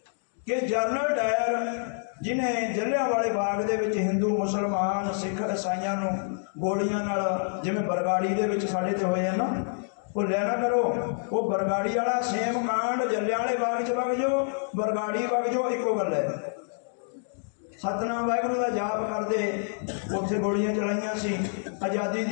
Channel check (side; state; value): right; silent; digital silence